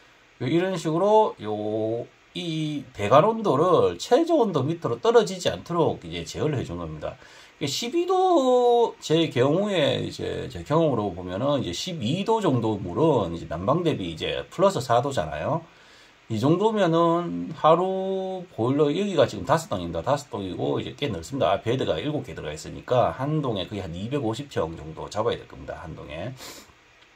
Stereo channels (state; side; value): identical; both; correlation 1.00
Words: 이런 식으로 이 배관 온도를 최저 온도 밑으로 떨어지지 않도록 이제 제어를 해준 겁니다. 12도 제 경우에 이제 제 경험으로 보면은 이제 12도 정도 물은 이제 난방 대비 이제 플러스 4도잖아요. 이 정도면은 하루 보일러 여기가 지금 5동입니다. 5동이고 이제 꽤 넓습니다. 베드가 7개 들어가 있으니까 한 동에 거의 한 250평 정도 잡아야 될 겁니다. 한 동에.